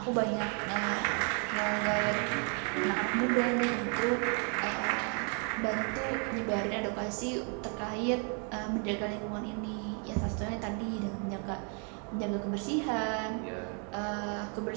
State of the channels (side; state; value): left; quieter; 39.2 dB